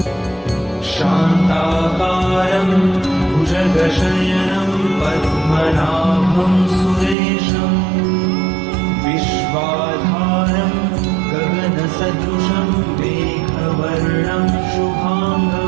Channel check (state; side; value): drops out; left; at 7.2 s